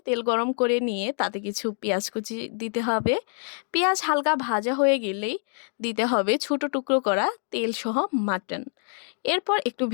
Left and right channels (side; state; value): right; silent; 57 dB below the other